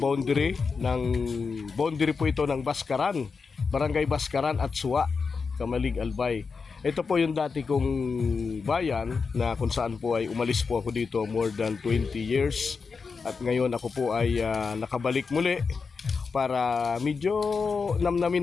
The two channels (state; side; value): quieter; right; 5.0 dB